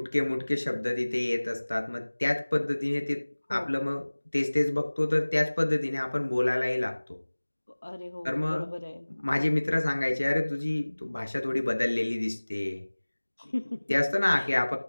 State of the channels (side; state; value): both; inverted; correlation -1.00